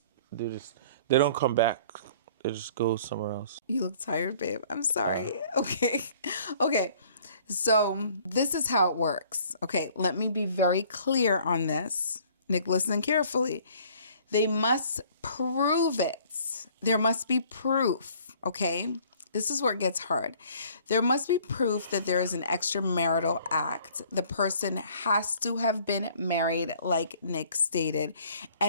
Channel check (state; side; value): inverted; both; correlation -0.55